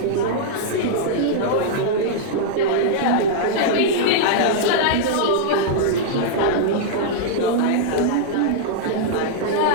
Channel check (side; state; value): both; different; correlation -0.02